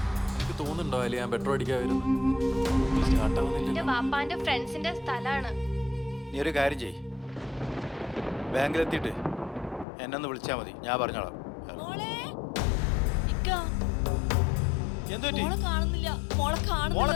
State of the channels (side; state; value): right; drops out; at 9.9 s